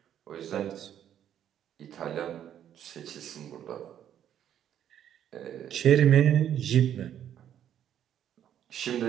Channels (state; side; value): quieter; left; 10.2 dB